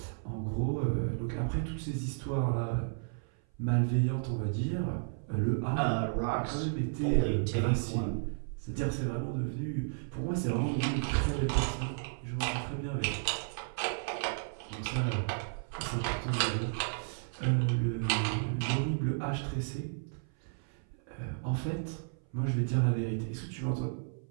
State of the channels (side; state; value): left; silent; 56 dB below the other